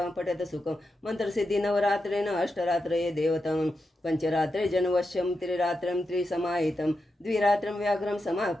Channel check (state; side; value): normal; both; correlation 0.88